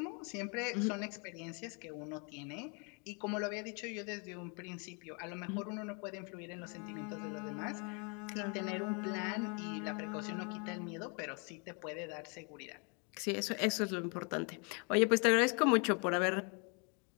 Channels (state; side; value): quieter; right; 35.3 dB